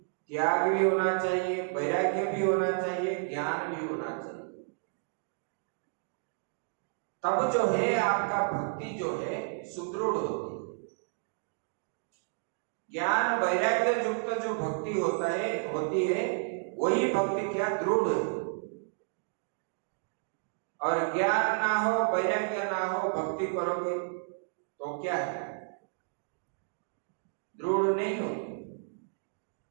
त्याग भी होना चाहिए, वैराग्य भी होना चाहिए, ज्ञान भी होना चाहिए। तब जो है आपका भक्ति जो है सुदृढ़ होती है। ज्ञान वैराग्य युक्त जो भक्ति होती है वही भक्ति क्या दृढ़। और ज्ञान ना हो, वैराग्य ना हो, भक्ति करोगे तो क्या है? दृढ़ नहीं हो।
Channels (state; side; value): silent; left; digital silence